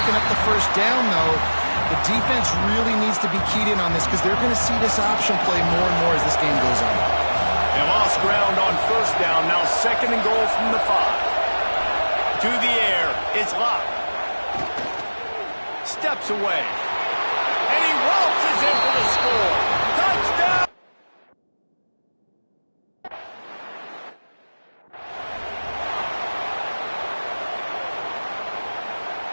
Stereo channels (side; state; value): both; inverted; correlation -1.00